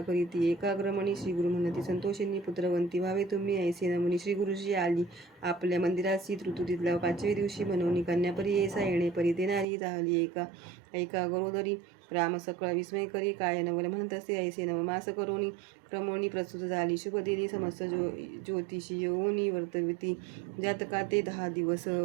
करीती एकाग्रमणी. श्री गुरु म्हणती संतोषिनी पुत्रवंती व्हावे तुम्ही ऐसे नमुनी. श्री गुरुजी आली आपल्या मंदिराची. ऋतुतीतल्या 5व्या दिवशी म्हणून कन्यापरी ऐसा. येणे परी ते नारी झाली ऐका गरोदरी. राम सकळ विस्मय करी. काय नवल म्हणत असे ऐसे नवमास करोनी. क्रमोनी प्रस्तुत झाली शुभ दिनी. समस्त ज्योतिषी येऊनी वर्तविती जातका ते 10 दिवस.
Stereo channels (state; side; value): drops out; left; at 9.7 s